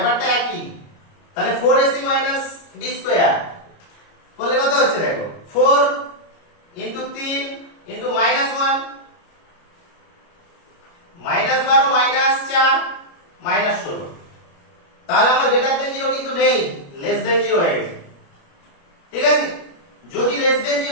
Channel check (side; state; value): right; late; 29 ms